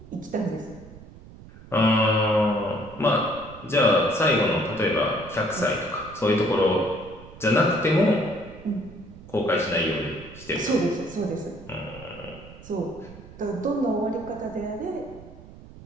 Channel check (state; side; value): noise; right; rumble, 18 dB below the sound